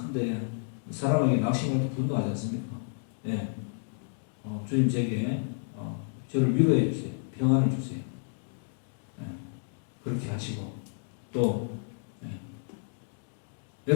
사람에게 낙심할 때 분노하지 않습니까? 예. 주님 제게 저를 위로해 주세요. 평안을 주세요. 예. 그렇게 하시고 또 예.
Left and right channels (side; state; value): right; silent; digital silence